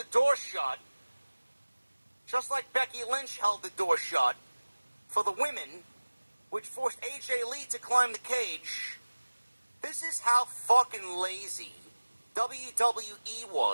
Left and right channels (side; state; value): both; inverted; correlation -1.00